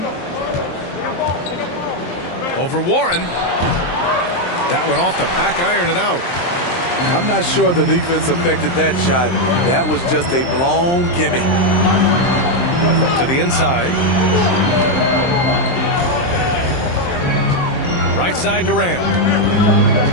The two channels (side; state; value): right; late; 23 ms